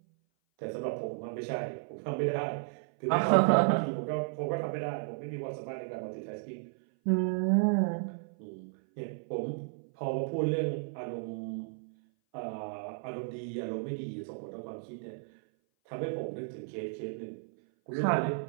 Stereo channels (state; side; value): silent; left; 56 dB below the other